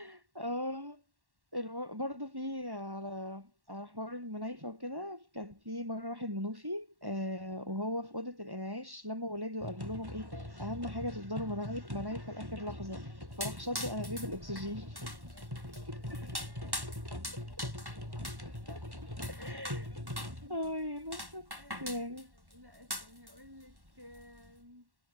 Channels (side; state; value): left; late; 1.1 ms